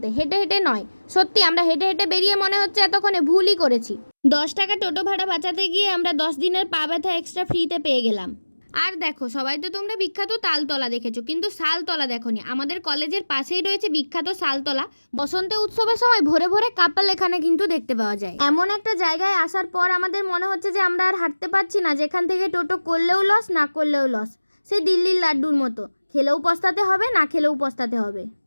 হেঁটে হেঁটে নয়। সত্যি আমরা হেঁটে হেঁটে বেরিয়ে মনে হচ্ছে এতক্ষণে ভুলই করেছি। 10 টাকা টোটো ভাড়া বাঁচাতে গিয়ে আমরা 10 দিনের পা ব্যথা এক্সট্রা ফ্রিতে পেয়ে গেলাম। আর দেখো, সবাই তো তোমরা বিখ্যাত তালতলা দেখেছো, কিন্তু শালতলা দেখোনি। আমাদের কলেজের পাশেই রয়েছে বিখ্যাত শালতলা। বসন্ত উৎসবের সময় ভোরে ভোরে কাপাল এখানে কিন্তু দেখতে পাওয়া যায়। এমন একটা জায়গায় আসার পর আমাদের মনে হচ্ছে যে আমরা আর হাঁটতে পারছি না, যেখান থেকে টোটো করলেও লস, না করলেও লস। সেই দিল্লির লাড্ডুর মতো, খেলেও পস্তাতে হবে, না খেলেও পস্তাতে হবে।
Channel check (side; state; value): both; inverted; correlation -1.00